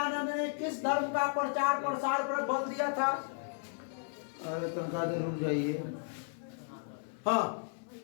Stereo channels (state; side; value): silent; right; digital silence